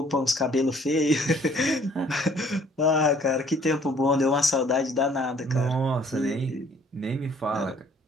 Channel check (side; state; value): both; normal; correlation 0.58